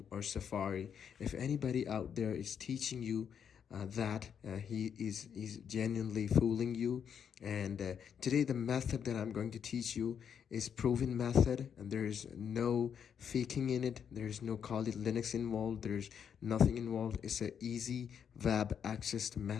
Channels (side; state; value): right; quieter; 7.8 dB